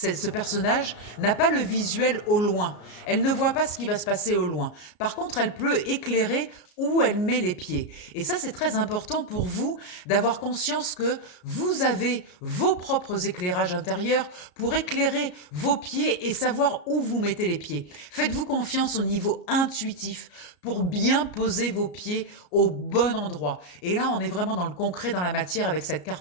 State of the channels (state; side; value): late; right; 33 ms